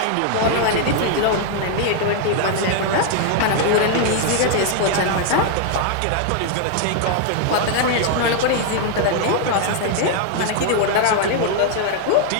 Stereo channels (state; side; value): different; both; correlation 0.00